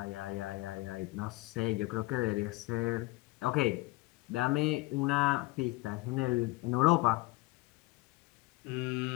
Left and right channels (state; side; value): quieter; right; 20.5 dB